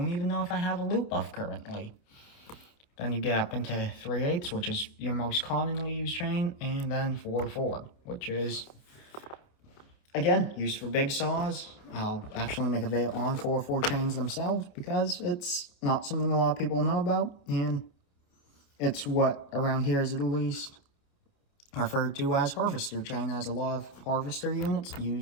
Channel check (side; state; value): right; late; 28 ms